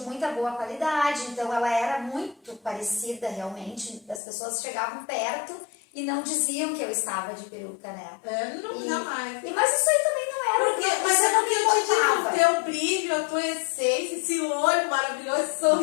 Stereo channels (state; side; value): drops out; right; at 4.2 s